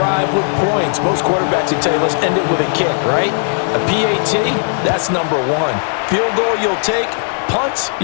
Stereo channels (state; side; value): silent; right; digital silence